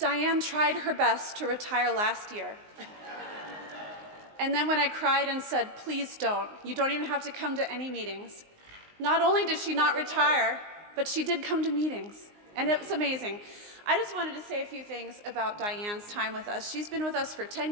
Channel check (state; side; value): late; left; 19 ms